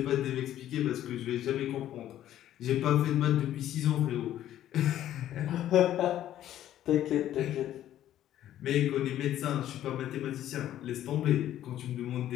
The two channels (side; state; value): right; quieter; 12.2 dB